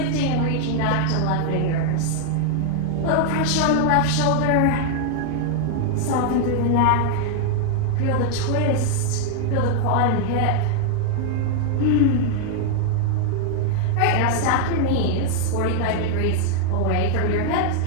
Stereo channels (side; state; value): both; different; correlation 0.00